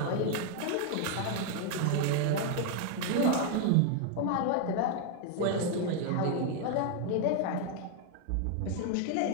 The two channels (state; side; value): different; both; correlation 0.00